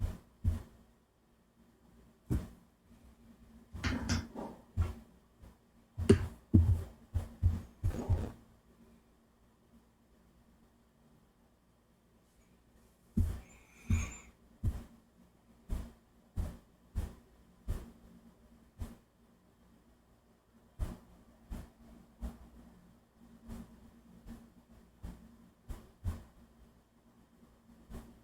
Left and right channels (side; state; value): both; identical; correlation 1.00